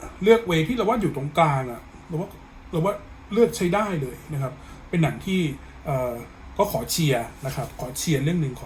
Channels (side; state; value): both; identical; correlation 1.00